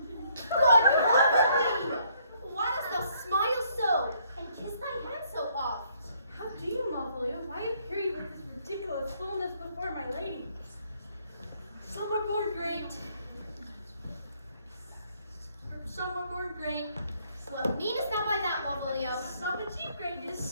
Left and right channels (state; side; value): inverted; both; correlation -0.68